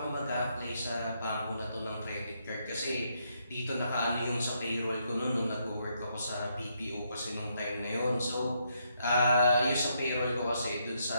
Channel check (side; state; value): both; inverted; correlation -0.76